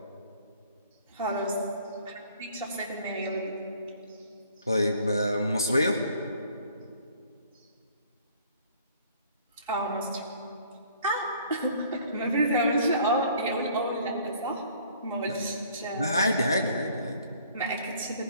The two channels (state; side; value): inverted; both; correlation -0.57